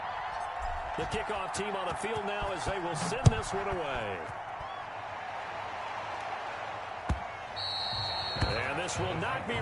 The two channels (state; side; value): identical; both; correlation 1.00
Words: The kickoff team on the field now as they will send this one away. And this will not be